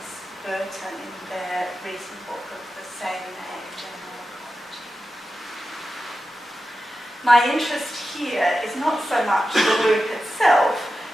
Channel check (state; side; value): normal; both; correlation 0.92